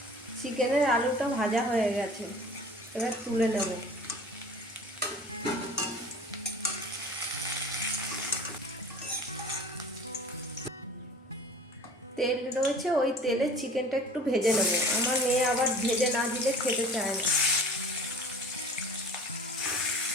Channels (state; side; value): normal; both; correlation 0.44